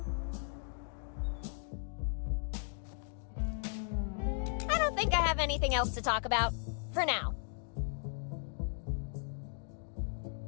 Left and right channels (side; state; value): right; silent; 53 dB below the other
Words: I don't think I have anything else to talk about. For now.